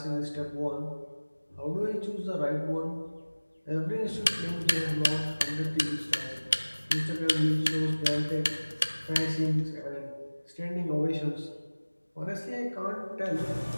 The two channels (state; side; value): inverted; both; correlation -1.00